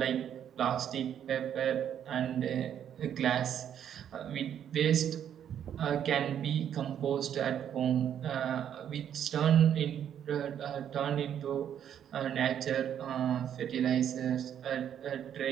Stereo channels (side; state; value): left; quieter; 9.5 dB